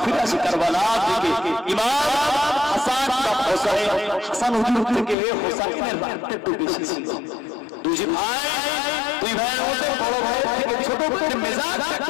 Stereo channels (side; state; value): right; drops out; at 5.2 s